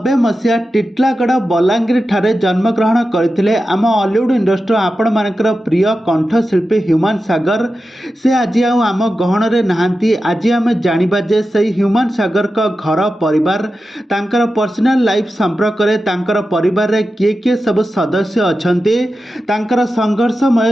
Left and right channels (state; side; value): normal; both; correlation 0.92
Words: Titlagarh Balangir ଠାରେ ଜନ୍ମଗ୍ରହଣ କରିଥିଲେ ଆମ ଅଲିଉଡ୍ ଇଣ୍ଡଷ୍ଟ୍ରି ଆପଣମାନଙ୍କର ପ୍ରିୟ କଣ୍ଠଶିଳ୍ପୀ ହ୍ୟୁମାନ ସାଗର। ସେ ଆଜି ଆଉ ଆମ ଗହଣରେ ନାହାନ୍ତି। ଆଜି ଆମେ ଜାଣିବା ଯେ ସେହି ହ୍ୟୁମାନ ସାଗରଙ୍କ ଘର ପରିବାର, ତାଙ୍କର ପର୍ସନାଲ ଲାଇଫ୍ ସମ୍ପର୍କରେ, ତାଙ୍କର ପରିବାରରେ କିଏ କିଏ ସବୁ ସଦସ୍ୟ ଅଛନ୍ତି, ତାଙ୍କର ସଂଘର୍ଷମୟ